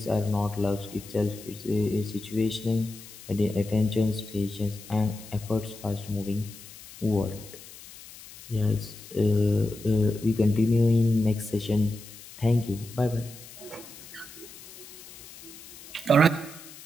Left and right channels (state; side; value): noise; left; hiss, 17 dB below the sound